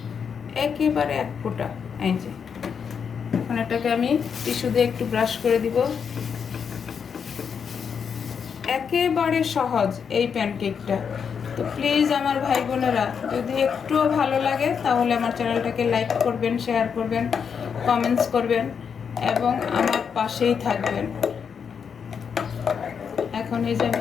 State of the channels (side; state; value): right; quieter; 6.8 dB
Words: একেবারে 1 ফোঁটা। এই যে এখন এটাকে আমি টিস্যু দিয়ে একটু ব্রাশ করে দিব। একেবারে সহজ এই প্যানকেকটা। তো প্লিজ আমার ভাই বোনেরা, যদি একটুও ভালো লাগে তাহলে আমার চ্যানেলটাকে লাইক করবেন, শেয়ার করবেন, কমেন্টস করবেন এবং আমার পাশেই থাকবেন। এখন এই যে